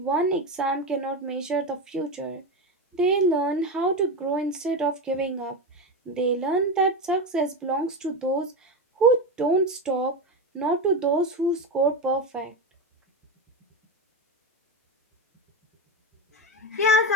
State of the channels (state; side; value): normal; both; correlation 0.16